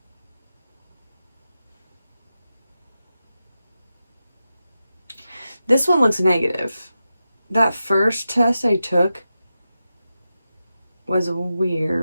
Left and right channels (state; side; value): inverted; both; correlation -0.91